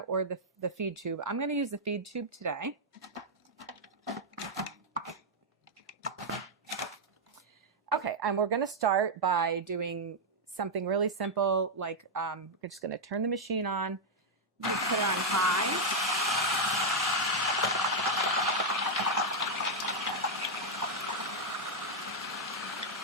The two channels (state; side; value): normal; both; correlation -0.03